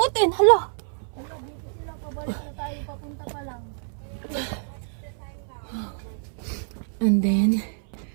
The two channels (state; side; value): silent; left; 60 dB below the other